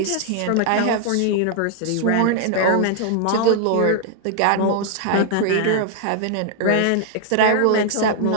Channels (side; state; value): both; different; correlation -0.01